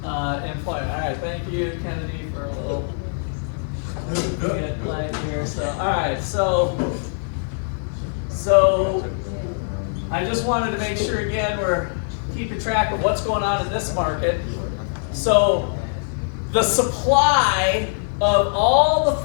employment. All right, thank you, Kennedy, for a little get light here. So, all right, so I just wanted to make sure again we're keeping track of what's going on in this market. So the supply of all the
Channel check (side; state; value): right; silent; 64 dB below the other